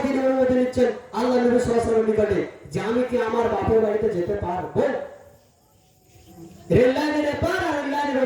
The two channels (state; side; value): identical; both; correlation 1.00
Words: তিনি অনুমতি নিচ্ছেন আল্লাহ নবী সাল্লাল্লাহু আলাইহি ওয়াসাল্লামের নিকটে যে আমি কি আমার বাপের বাড়িতে যেতে পারবো? রেললাইনের এপার আর রেললাইনের